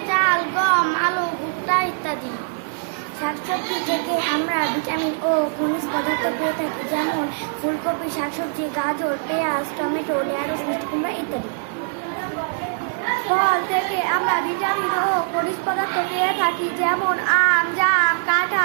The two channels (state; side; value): silent; left; 64 dB below the other